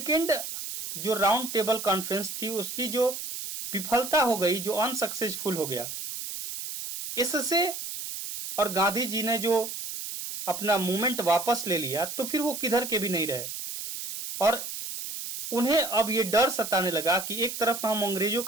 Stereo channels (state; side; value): noise; right; hiss, 7 dB below the sound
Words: जो राउंड टेबल कॉन्फ्रेंस थी उसकी जो विफलता हो गई, जो अनसक्सेसफुल हो गया, इससे और गांधी जी ने जो अपना मूवमेंट वापस ले लिया तो फिर वो किधर के भी नहीं रहे और उन्हें अब ये डर सताने लगा कि एक तरफ हम अंग्रेजों